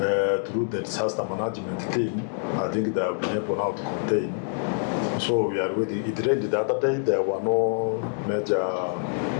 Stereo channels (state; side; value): silent; right; digital silence